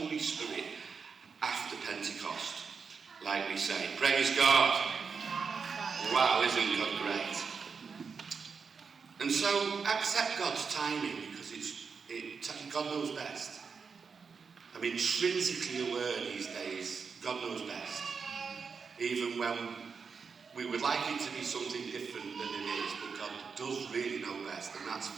Spirit after Pentecost, like we say. Praise God. Wow, isn't God great? And so accept God's timing because God knows best. I'm intrinsically aware these days, God knows best. Even when we would like it to be something different than it is, but God does really know best, and that's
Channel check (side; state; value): left; quieter; 5.6 dB